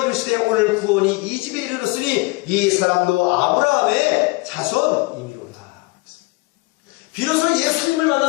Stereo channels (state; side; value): quieter; right; 25.1 dB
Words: 이르시되 오늘 구원이 이 집에 이르렀으니 이 사람도 아브라함의 자손이니로라. 비로소 예수님을